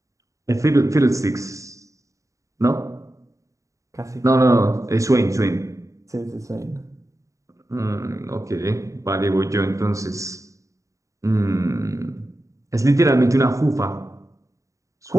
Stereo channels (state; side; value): late; left; 0.16 ms